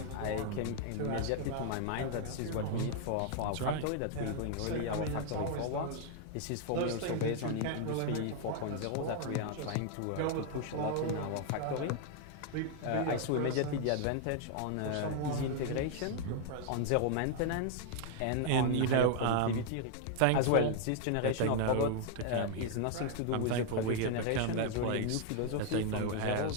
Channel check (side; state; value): both; different; correlation 0.00